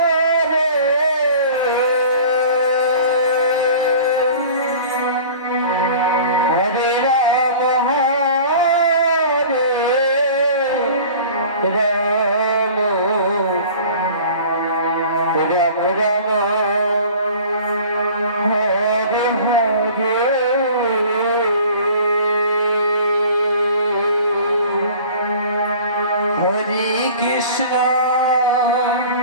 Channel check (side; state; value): both; inverted; correlation -0.43